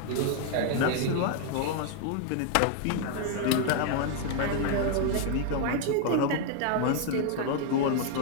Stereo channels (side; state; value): both; different; correlation 0.00